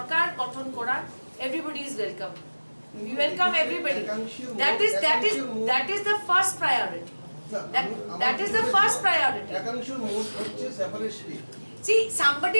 গঠন করার, everybody is welcome. We welcome everybody. That is the first priority. That is the first priority. একাংশের মোট হচ্ছে separation. See,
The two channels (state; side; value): inverted; both; correlation -1.00